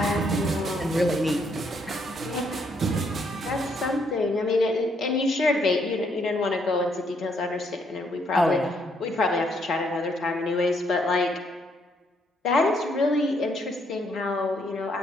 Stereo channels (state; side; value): normal; both; correlation 0.72